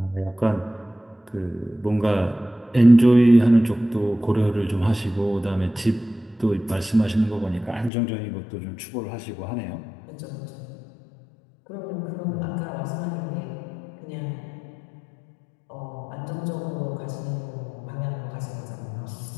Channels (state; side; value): drops out; right; at 7.9 s